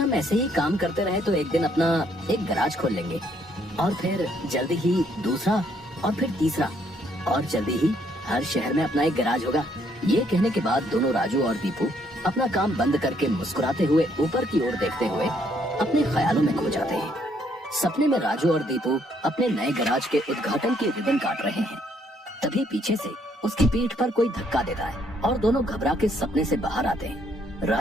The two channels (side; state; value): both; normal; correlation 0.69